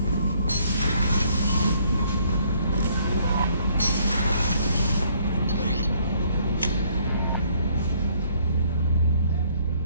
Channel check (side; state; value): both; inverted; correlation -0.64